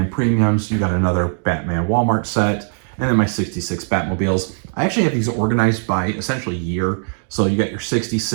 premiums. You've got another Batman Walmart set, and then my 66 Batmobiles. I actually have these organized by essentially year. So you got your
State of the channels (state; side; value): silent; left; 62 dB below the other